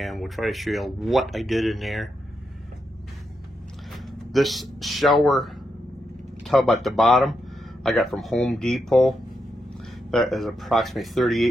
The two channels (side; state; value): both; normal; correlation 0.84